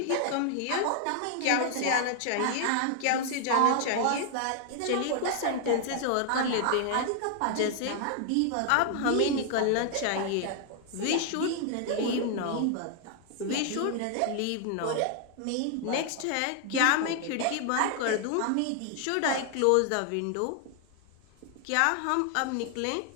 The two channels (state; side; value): different; both; correlation 0.00